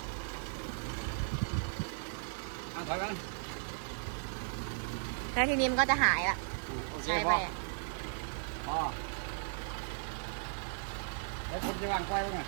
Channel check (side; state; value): left; silent; digital silence